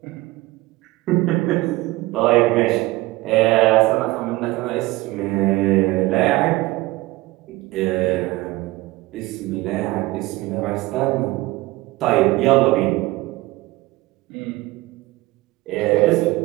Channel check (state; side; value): quieter; left; 19.7 dB